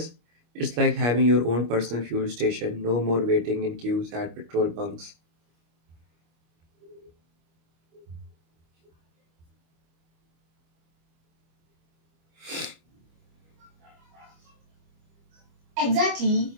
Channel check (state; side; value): late; left; 25 ms